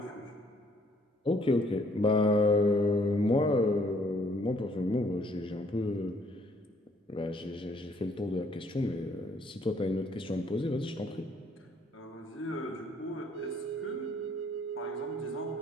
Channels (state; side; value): normal; both; correlation 0.64